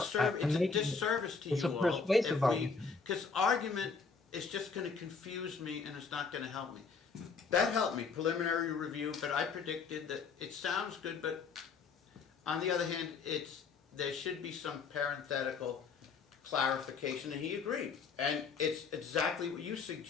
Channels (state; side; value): quieter; right; 5.1 dB